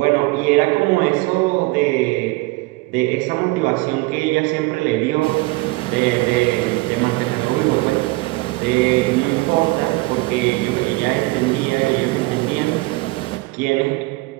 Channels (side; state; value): left; quieter; 22.5 dB